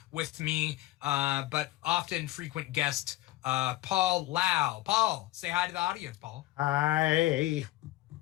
with me, but often frequent guest, Paul Lau. Paul, say hi to the audience, Paul. Hi.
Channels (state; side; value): quieter; right; 17.2 dB